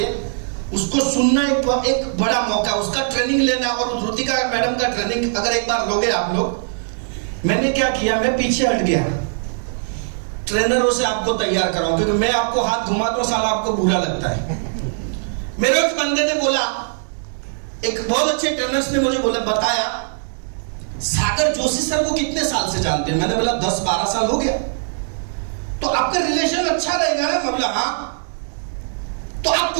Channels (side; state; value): left; silent; digital silence